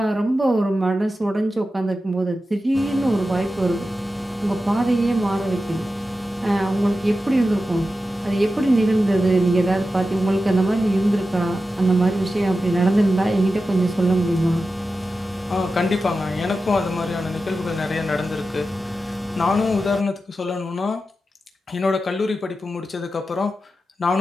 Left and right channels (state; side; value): normal; both; correlation 0.92